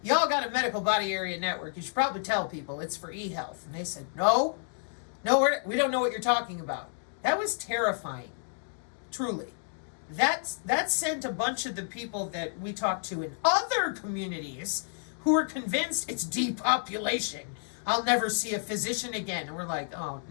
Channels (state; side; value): silent; right; digital silence